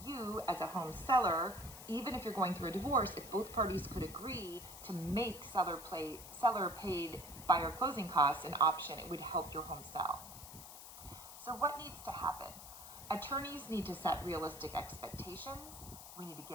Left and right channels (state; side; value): noise; left; hiss, 13 dB below the sound